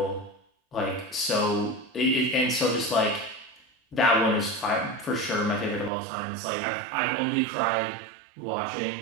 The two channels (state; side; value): drops out; left; at 5.9 s